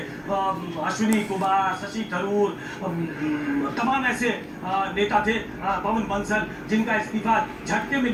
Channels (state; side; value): identical; both; correlation 1.00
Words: अश्विनी कुमार, शशि थरूर, तमाम ऐसे नेता थे, पवन बंसल, जिनका इस्तीफा झटके में